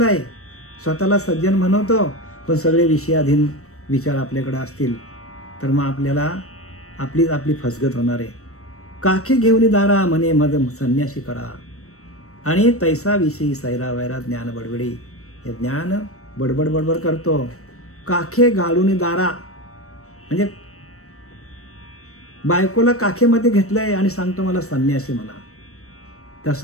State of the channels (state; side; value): late; right; 0.64 ms